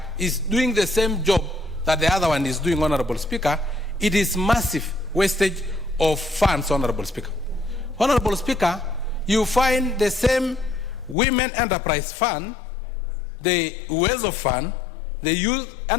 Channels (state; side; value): drops out; right; at 11.2 s